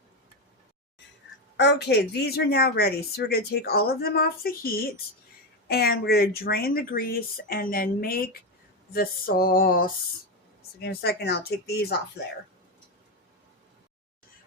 Okay, these are now ready. So we're going to take all of them off the heat, and we're going to drain the grease and then make the sauce. So give me a second, I'll take these off there.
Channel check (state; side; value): normal; both; correlation 0.12